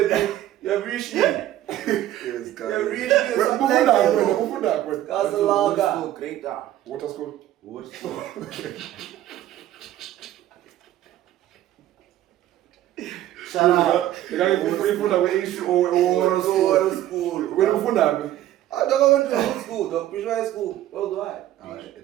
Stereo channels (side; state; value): left; quieter; 13.2 dB